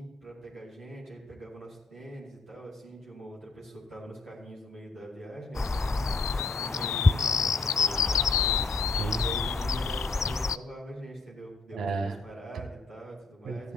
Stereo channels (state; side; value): quieter; right; 3.8 dB